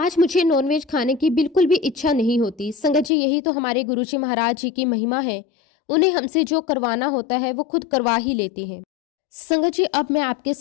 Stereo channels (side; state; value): right; drops out; at 3.1 s